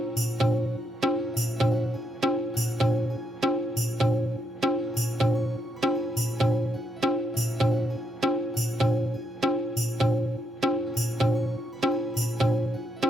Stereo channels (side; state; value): both; normal; correlation 0.77